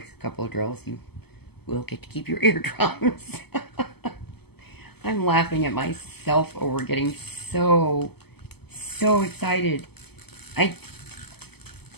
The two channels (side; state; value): right; late; 0.97 ms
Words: couple of drills, you will get to keep your eardrums. I'm laughing at myself over getting so excited.